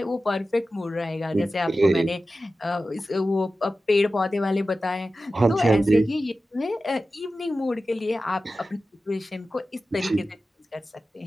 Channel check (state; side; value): normal; both; correlation 0.94